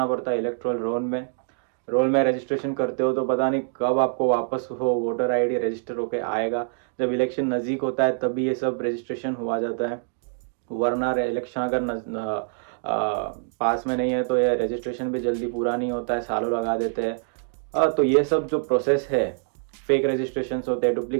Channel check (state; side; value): silent; left; digital silence